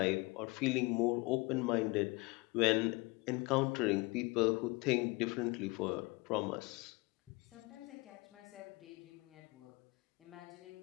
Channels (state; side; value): quieter; right; 25.0 dB